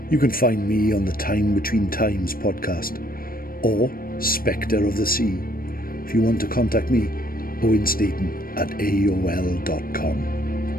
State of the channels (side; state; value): right; late; 0.42 ms